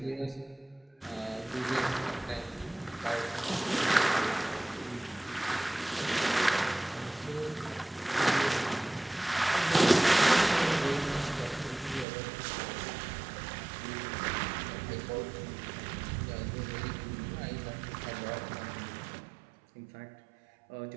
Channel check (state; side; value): drops out; left; at 12.1 s